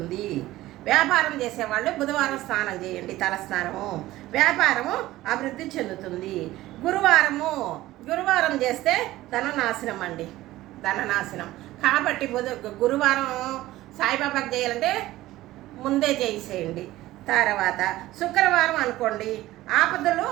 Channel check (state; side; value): quieter; left; 16.4 dB